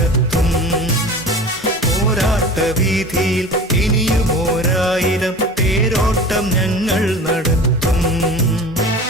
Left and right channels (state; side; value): normal; both; correlation 0.37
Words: പോരാട്ടവീഥിയിൽ ഇനിയും 1000 തേരോട്ടം ഞങ്ങൾ നടത്തും.